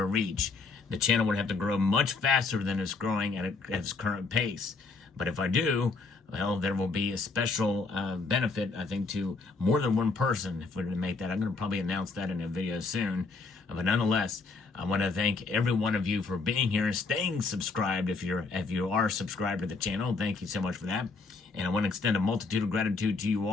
reach. The channel would have to grow much faster than it's growing at its current pace. But if I do, well, there will be a special benefit, I think, to more than one person if we're going to make that. I'm going to probably announce that in a video soon. But nonetheless, I want to thank every one of you for being here and staying subscribed. If you are subscribed to the channel, thank you so much for that. And I want to extend a multitude of gratitude to you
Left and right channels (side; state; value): right; quieter; 4.2 dB